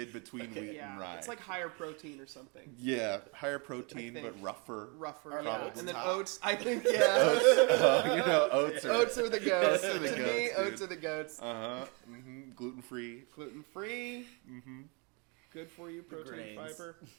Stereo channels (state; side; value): quieter; left; 32.6 dB